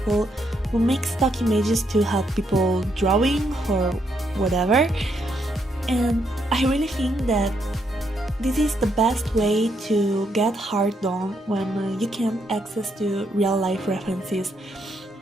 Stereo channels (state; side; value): normal; both; correlation 0.76